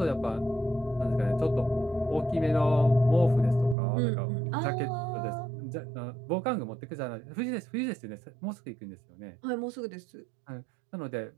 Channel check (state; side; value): drops out; left; at 3.8 s